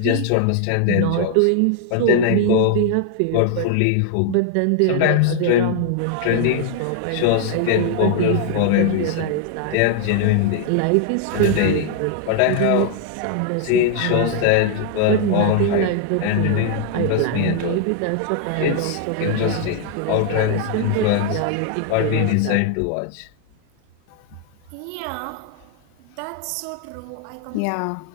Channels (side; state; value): both; different; correlation 0.00